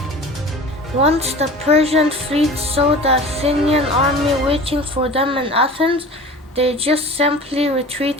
Once the Persian fleet saw the Athenian army waiting for them in Athens, they just simply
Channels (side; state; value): both; normal; correlation 0.39